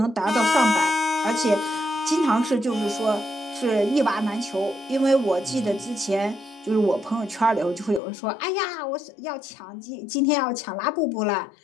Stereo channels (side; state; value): right; drops out; at 8.0 s